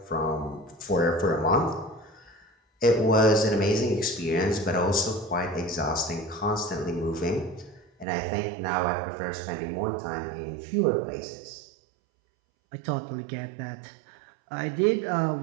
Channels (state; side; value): drops out; left; at 8.1 s